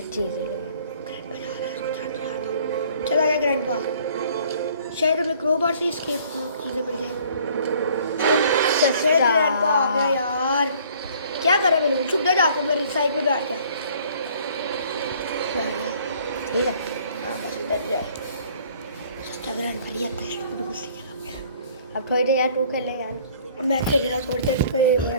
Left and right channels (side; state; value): both; inverted; correlation -0.56